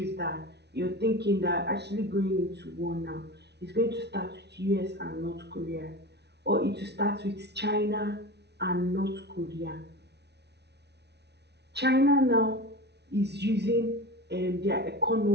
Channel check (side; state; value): left; late; 0.49 ms